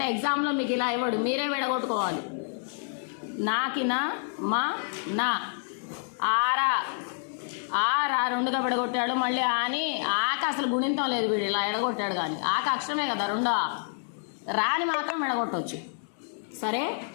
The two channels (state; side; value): silent; right; 59 dB below the other